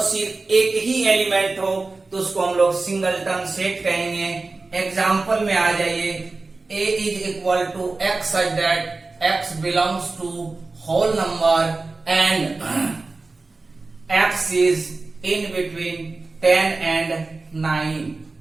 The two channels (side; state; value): left; quieter; 3.6 dB